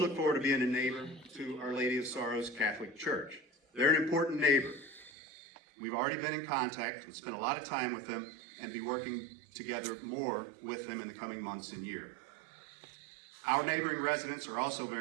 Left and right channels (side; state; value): left; drops out; at 5.1 s